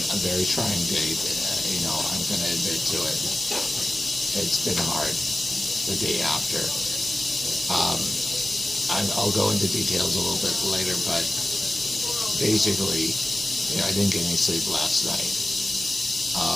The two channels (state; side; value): normal; both; correlation 0.95